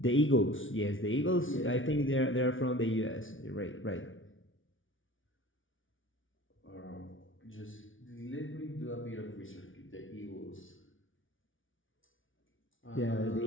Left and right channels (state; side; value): late; right; 0.57 ms